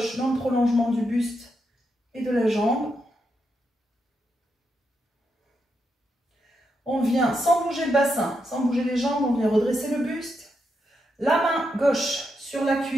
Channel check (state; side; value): normal; both; correlation 0.83